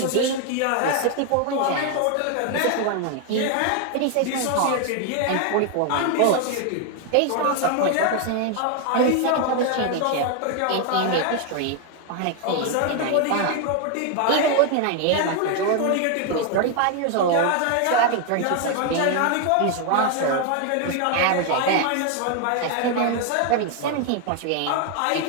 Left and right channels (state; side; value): different; both; correlation 0.01